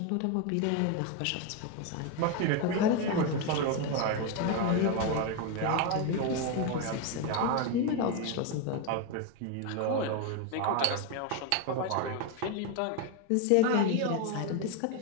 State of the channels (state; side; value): different; both; correlation 0.02